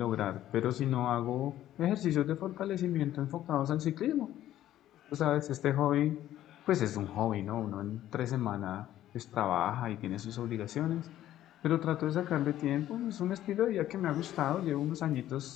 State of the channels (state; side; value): quieter; right; 12.9 dB